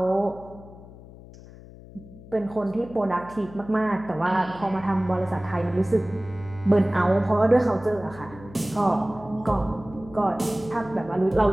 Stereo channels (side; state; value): left; noise; hum, 18 dB below the sound